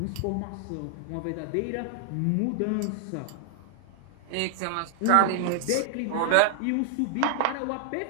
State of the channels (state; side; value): different; both; correlation 0.00